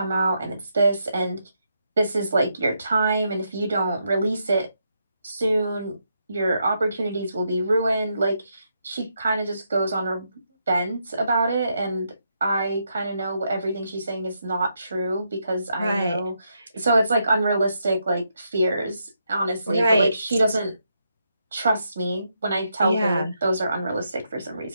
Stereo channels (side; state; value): both; inverted; correlation -0.80